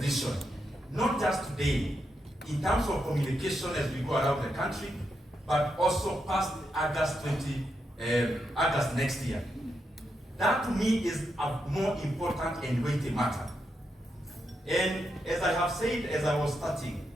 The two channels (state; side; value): normal; both; correlation 0.83